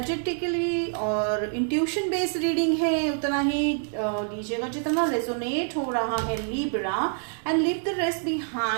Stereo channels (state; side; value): silent; left; 61 dB below the other